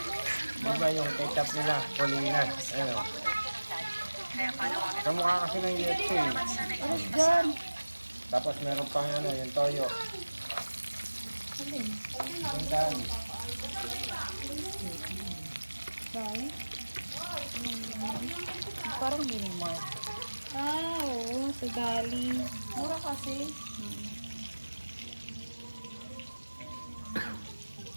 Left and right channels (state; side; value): inverted; both; correlation -1.00